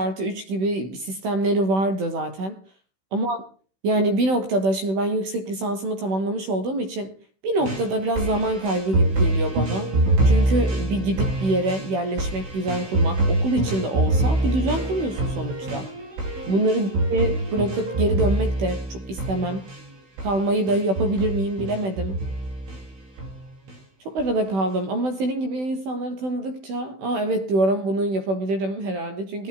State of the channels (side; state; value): left; late; 16 ms